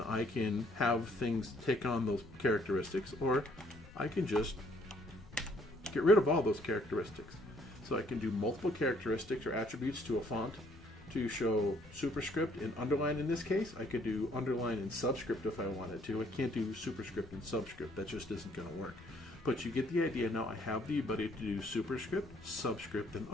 I can have things take on those characteristics, or I can just get rid of all those characteristics. So I can do multiple characteristics or attributes to a font to show superscript and underline in this case. I could do underline and subscript if I wanted to. I can't do superscript and subscript. That just isn't going to work. But you get the idea. Now I have the ability to do superscript, subscript, and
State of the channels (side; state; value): left; noise; rumble, 21 dB below the sound